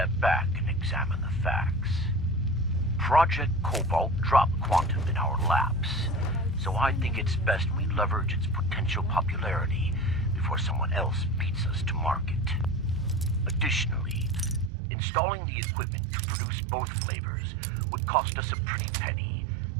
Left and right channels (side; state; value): left; drops out; at 14.7 s